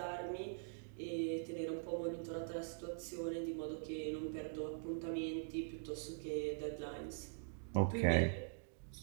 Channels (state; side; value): silent; left; digital silence